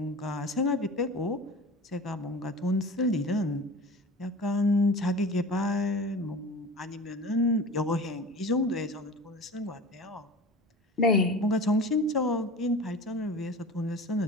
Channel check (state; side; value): normal; both; correlation 0.36